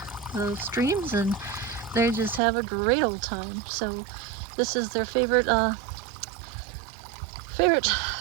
the streams, and they just have a great old time. So this is their favorite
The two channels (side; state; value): left; drops out; at 2.4 s